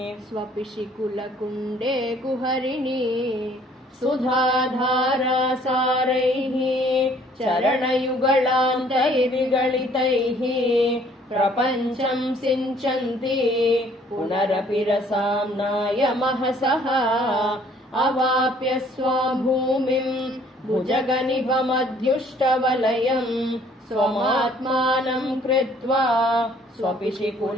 स्वपिशि कुलकुण्डे कुहरिणी सुधाधारासारैः चरणयुगलान्तैर्विगलितैः प्रपञ्चं सिञ्चन्ति पुनरपि रसाम्नाय महसः अवाप्य स्वां भूमिम् भुजगनिभमध्युष्टवलयम् स्वमात्मानं कृत्वा स्वपिशि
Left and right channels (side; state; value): both; normal; correlation 0.59